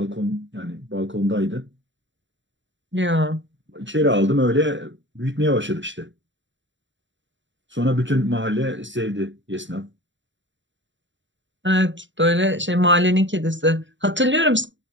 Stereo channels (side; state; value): left; late; 0.54 ms